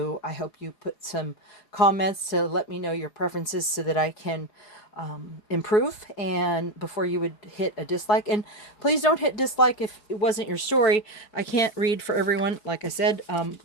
I hope you put some comments to let me know your preferences so that I can improve, and before you would hit a dislike. And please don't hit dislike if it wasn't your story. I can't read for everyone, like I said,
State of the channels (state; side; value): late; right; 4.9 ms